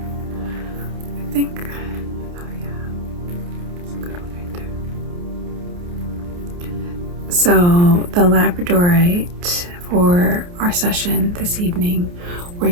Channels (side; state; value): left; late; 29 ms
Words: I think, oh yeah, it's a good one right there. So the labradorite, for our session this evening, we're